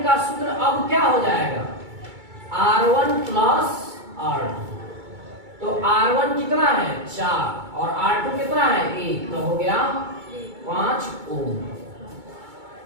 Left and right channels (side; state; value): left; late; 2.2 ms